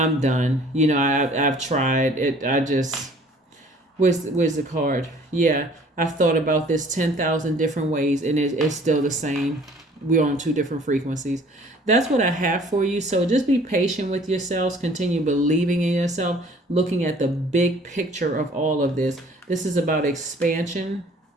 done. You know, I've tried it. I just where's the card? Yeah, I've thought about this 10,000 different ways, and it's still the same. We're on two different frequencies. That's what I have for you. So just be patient with yourselves. Continue believing in yourself, looking at the big picture of all of this. This is about expansion.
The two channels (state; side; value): normal; both; correlation 0.53